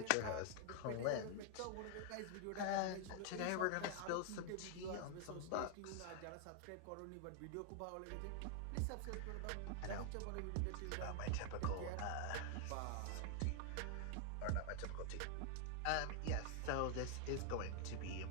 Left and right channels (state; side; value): different; both; correlation 0.00